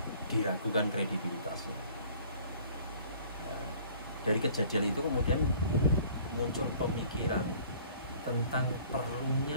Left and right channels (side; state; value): both; inverted; correlation -0.52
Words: diragukan kredibilitasnya. Dari kejadian itu kemudian muncul pemikiran tentang